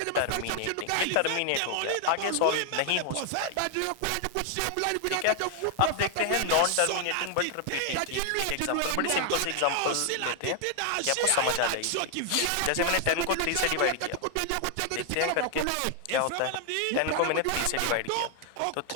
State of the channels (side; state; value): both; different; correlation 0.00